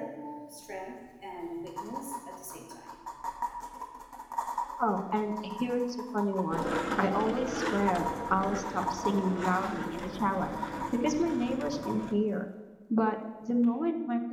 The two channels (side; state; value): both; identical; correlation 1.00